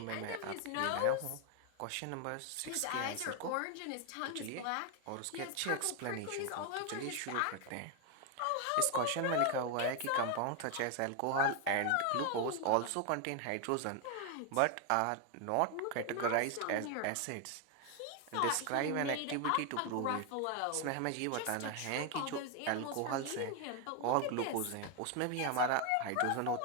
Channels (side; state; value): both; different; correlation 0.01